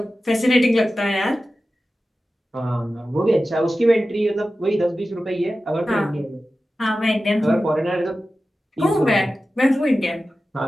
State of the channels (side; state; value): both; normal; correlation 0.94